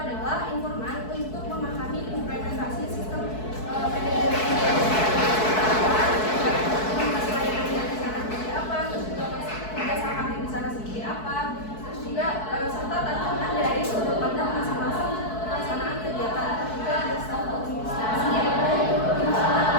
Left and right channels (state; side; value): late; right; 4.6 ms